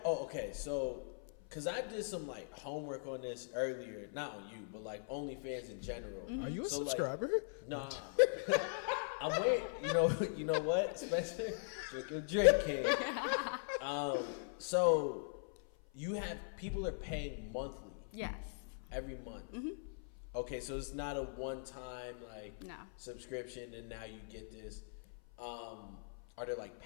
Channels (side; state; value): right; silent; 51 dB below the other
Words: okay. So, because I did some like homework on this earlier, not on you, but like OnlyFans in general. Mm-hmm. Are you a So, like, subscriber? Nah. I'm waiting. You know what, Spencer? Drink your drink, King. So you have people are paying monthly. Yes. Every month. Mm-hmm. Okay, so it's not a one-time like No. subscription, and now you get this. Are there like